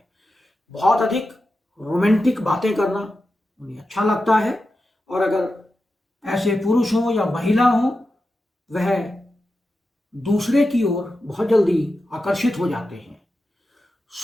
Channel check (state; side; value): normal; both; correlation 0.91